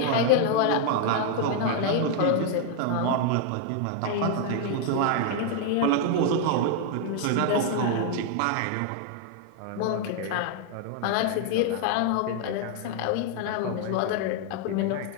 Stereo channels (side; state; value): both; different; correlation 0.00